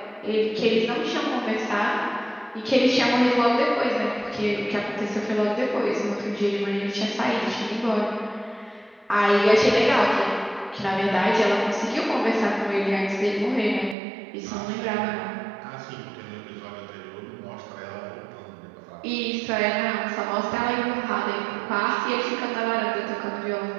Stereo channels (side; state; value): left; drops out; at 14.0 s